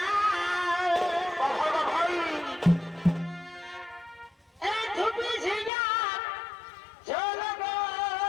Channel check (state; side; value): drops out; right; at 5.7 s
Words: বাবা ভাই এই ধুপি ঝিঙা ঝোল গো